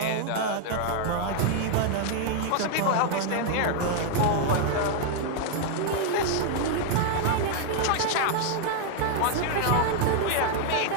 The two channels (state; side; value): different; both; correlation 0.00